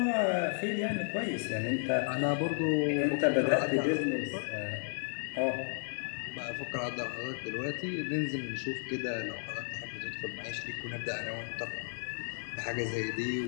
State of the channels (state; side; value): silent; right; digital silence